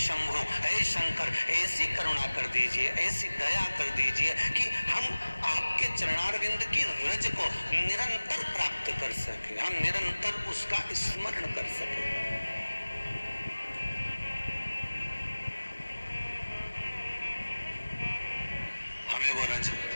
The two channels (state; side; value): inverted; both; correlation -1.00